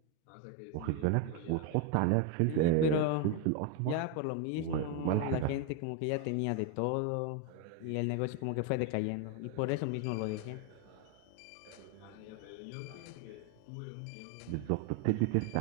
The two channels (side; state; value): both; different; correlation 0.02